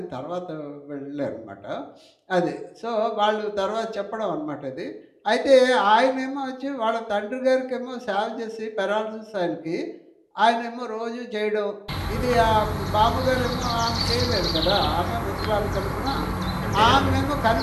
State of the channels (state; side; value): identical; both; correlation 1.00